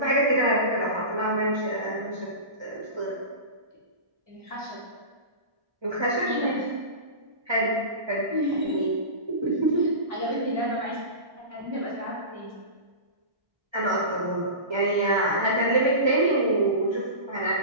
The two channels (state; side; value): late; left; 1.3 ms